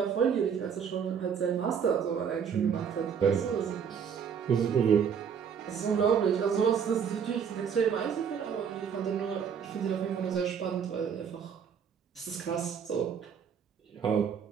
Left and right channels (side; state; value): left; quieter; 7.3 dB